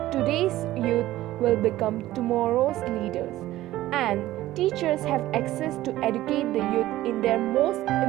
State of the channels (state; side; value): quieter; left; 15.5 dB